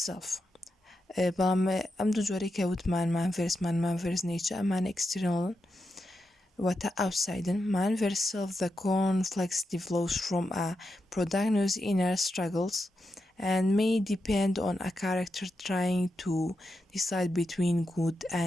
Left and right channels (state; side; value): normal; both; correlation 0.86